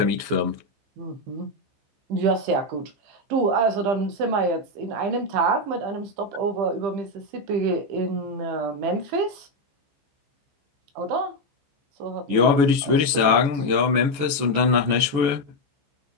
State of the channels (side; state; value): left; late; 14 ms